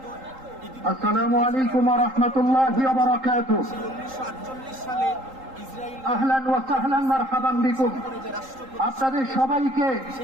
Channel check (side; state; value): left; late; 3.8 ms